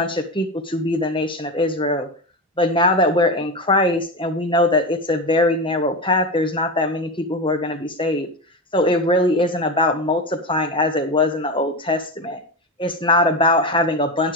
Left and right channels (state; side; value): normal; both; correlation 0.19